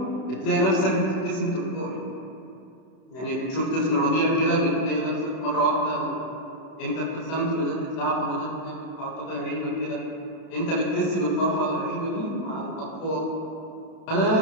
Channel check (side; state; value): right; late; 31 ms